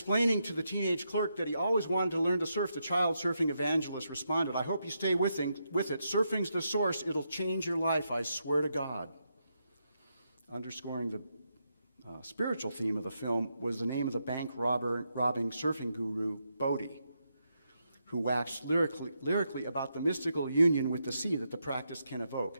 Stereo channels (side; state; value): both; inverted; correlation -0.82